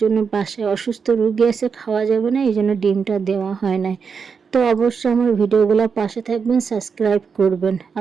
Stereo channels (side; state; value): left; quieter; 5.9 dB